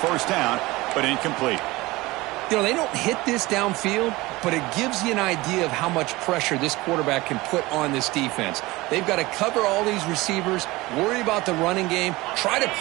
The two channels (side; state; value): left; quieter; 20.7 dB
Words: first down, but incomplete. You know, they don't hit this downfield, but it gives you an idea of how much pressure this quarterback can put on this defense. They've got to cover all these receivers, worry about the running game, try to